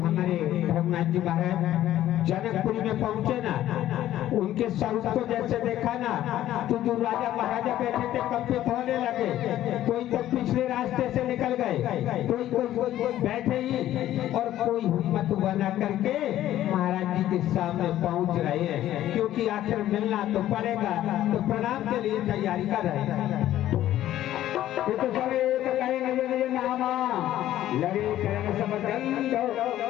रघुनाथ जी महाराज जनकपुरी में पहुंचे ना, उनके स्वरूप को जैसे देखा ना तो जो राजा महाराजा बैठे थे कंपित होने लगे। कोई तो पिछले रास्ते से निकल गए, कोई बैठे ही और कोई हिम्मत बना करके महाराज जी के सामने पहुंच रहे हैं, क्योंकि आखिर मिलना तो पड़ेगा, तो प्रणाम के लिए तैयारी कर रहे हैं। ये तो सब एक कहेंगे निज नामा लगे करण समदंड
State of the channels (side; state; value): right; quieter; 13.1 dB